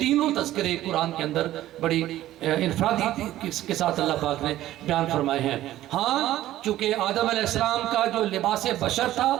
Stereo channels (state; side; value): quieter; left; 14.1 dB